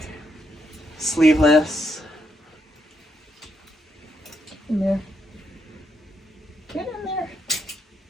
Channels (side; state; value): both; normal; correlation 0.78